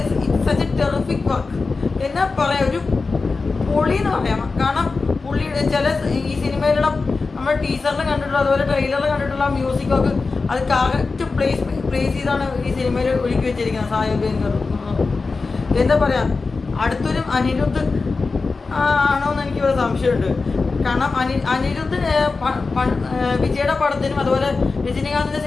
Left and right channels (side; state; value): right; quieter; 4.1 dB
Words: സച്ച് എ ടെറിഫിക് വർക്ക് എന്നാ പറയാം, ഒരു പൊളി എന്ന് പറയാം. കാരണം പുള്ളിയുടെ ചില ഈ സിനിമയിലുള്ള നമ്മൾ ടീസറിൽ കണ്ടിട്ടുള്ള അതുപോലെ ട്രെയിലറിൽ കണ്ടിട്ടുള്ള മ്യൂസിക്കൊക്കെ അത് കറക്റ്റ് പ്ലേസ് ചെയ്താണ് ഈ സിനിമയിൽ ഒരുക്കി വെച്ചിരിക്കുന്നത് സായി അഭ്യങ്കർ. എന്താ പറയുക, അടുത്തൊരു അനിരുദ്ധ് ആണോന്ന് എനിക്കൊരു സംശയമുണ്ട്. കാരണം അനിരുദ്ധ് വിജയുടെ പടത്തിനും അതുപോലെ രജനീകാന്തിൻ്റെ